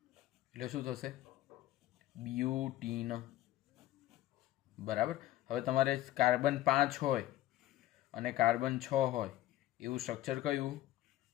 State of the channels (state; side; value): quieter; right; 14.6 dB